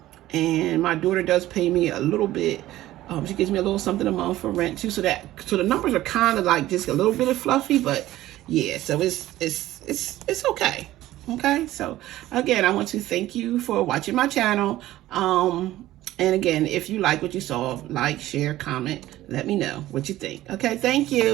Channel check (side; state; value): left; quieter; 15.2 dB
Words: And my daughter does pay me a little bit. She gives me a little something a month for rent too. So the numbers are kind of like just a little bit of fluffy, but yeah, so it's okay. Okay. So again, I want to thank you for watching my channel. And again, if you like what you saw, like, share, comment, let me know what you think. Okay. Thank